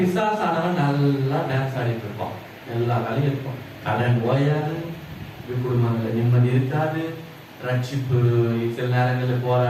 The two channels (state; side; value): identical; both; correlation 1.00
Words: நல்லா டான்ஸ் ஆடிட்டு இருப்பான், எல்லா வேலையும் இருக்கும், கடன் ஓயாது, குடும்பங்கள்ல நிம்மதி இருக்காது, ரட்சிப்பு சில நேரங்களில்